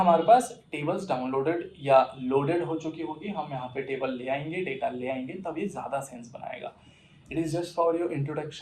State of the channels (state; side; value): identical; both; correlation 1.00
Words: पास टेबल्स डाउनलोडेड या लोडेड हो चुकी होगी। हम यहाँ पे टेबल ले आएंगे, डेटा ले आएंगे, तब ये ज़्यादा सेंस बनाएगा। It is just for your